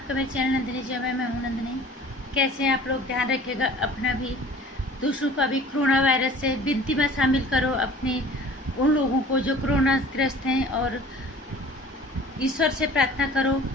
मेरे चैनल नंदिनी जी में। मैं हूँ नंदिनी। कैसे हैं आप लोग? ध्यान रखिएगा अपना भी, दूसरों का भी। कोरोना वायरस से विनती में शामिल करो अपने उन लोगों को जो कोरोना ग्रस्त हैं, और ईश्वर से प्रार्थना करो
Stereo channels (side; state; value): both; normal; correlation 0.47